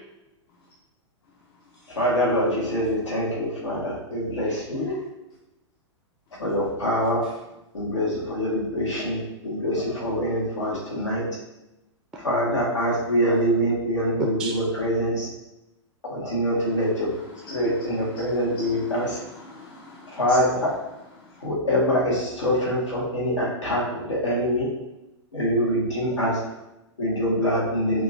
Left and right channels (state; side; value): normal; both; correlation -0.18